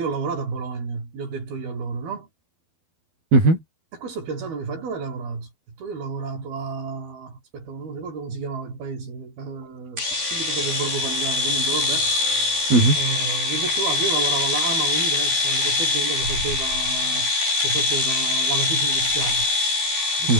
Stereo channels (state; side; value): late; left; 12 ms